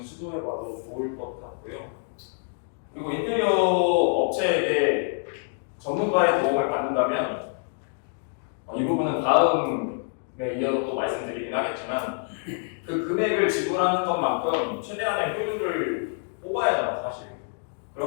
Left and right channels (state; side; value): silent; right; 61 dB below the other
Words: 시도해봐도 좋을 것 같고요. 그리고 인테리어 업체에게 전문가의 도움을 받는다면 이 부분은 다음에 이어서 또 말씀드리긴 하겠지만 그 금액을 지불하는 것만큼 최대한의 효율을 뽑아야 하잖아요, 사실.